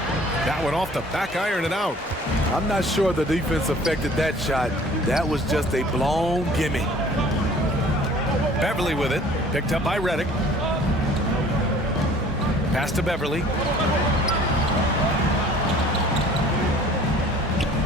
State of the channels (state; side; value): normal; both; correlation 0.51